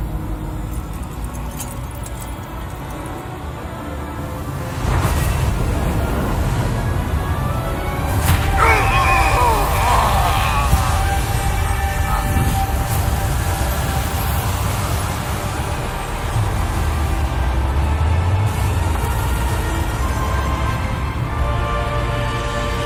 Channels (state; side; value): identical; both; correlation 1.00